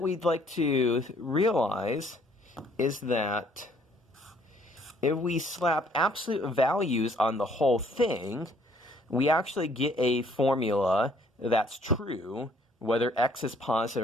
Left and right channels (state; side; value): normal; both; correlation 0.62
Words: we'd like to realize is that if we slap absolute values on the whole thing, we actually get a formula that's true whether x is